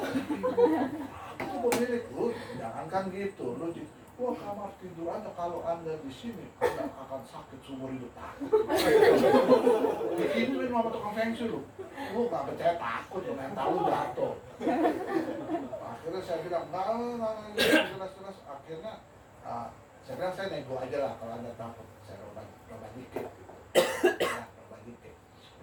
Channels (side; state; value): both; identical; correlation 1.00